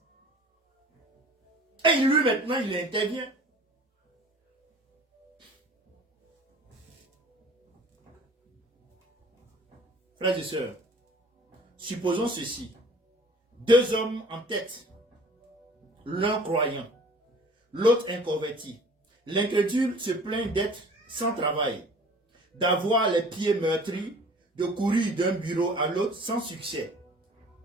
Et lui maintenant, il intervient. Frères et sœurs, supposons ceci. Deux hommes en tête. L'un croyant, l'autre inconverti. L'incrédule se plaint d'être sans travail, d'avoir les pieds meurtris, de courir d'un bureau à l'autre sans succès.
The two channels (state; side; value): normal; both; correlation 0.48